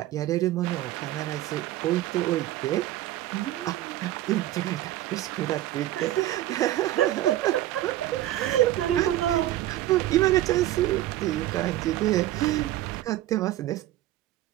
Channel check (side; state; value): left; quieter; 14.5 dB